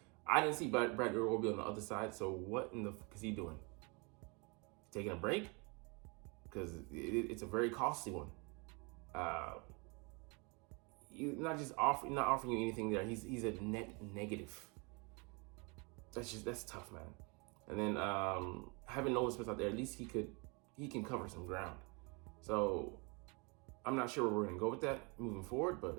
I didn't see Bradley Roby on the other side, so what in the fuck is he doing? Taking a break? Because it's a very costly one. Not offering you anything there. He's a net negative. That's tough, man. And then having Nolan Smith out there, at least he can cover some ground. So I'm not sure where we're gonna go with that moving forward,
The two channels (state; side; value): quieter; left; 31.0 dB